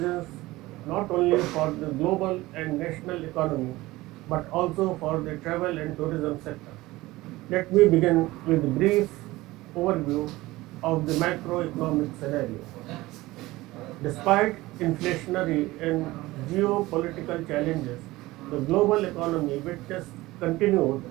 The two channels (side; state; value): left; quieter; 19.0 dB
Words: not only for the global and national economy, but also for the travel and tourism sector. Let me begin with a brief overview of the macroeconomic scenario. Despite inflationary and geopolitical challenges, the global economy witnessed continued